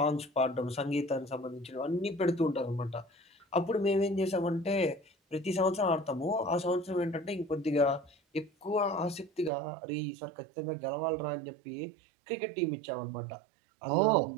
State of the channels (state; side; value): drops out; left; at 9.5 s